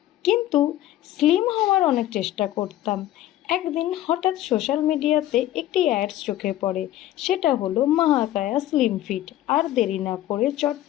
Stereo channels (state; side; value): quieter; right; 13.7 dB